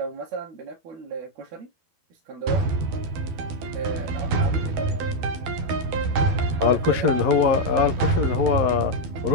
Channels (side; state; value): left; late; 12 ms